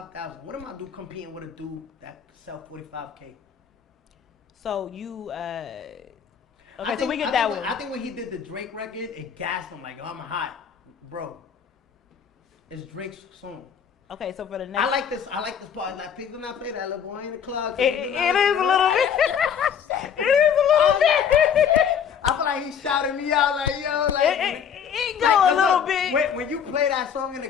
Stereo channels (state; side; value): quieter; right; 7.7 dB